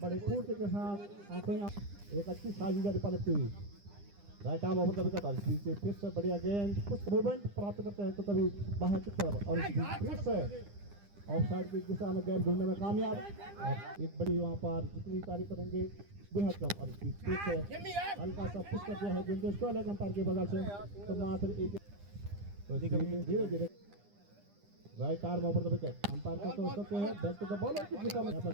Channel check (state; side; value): late; left; 9.9 ms